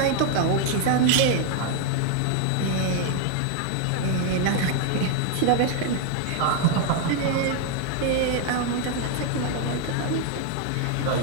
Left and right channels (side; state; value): both; different; correlation 0.01